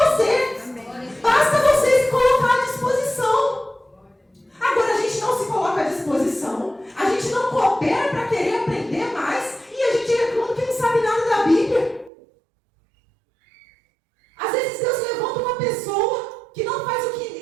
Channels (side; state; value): left; drops out; at 12.1 s